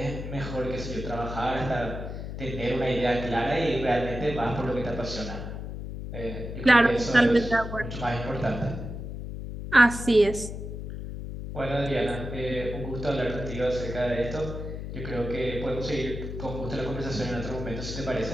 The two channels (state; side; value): noise; left; hum, 7 dB below the sound